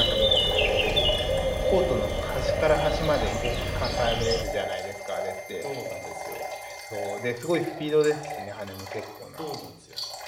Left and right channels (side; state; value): both; identical; correlation 1.00